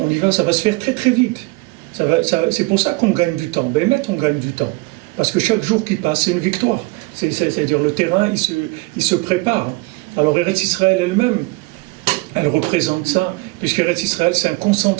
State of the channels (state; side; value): quieter; left; 25.0 dB